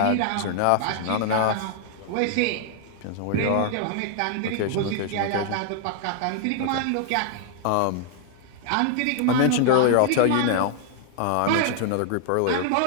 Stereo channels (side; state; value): both; different; correlation 0.00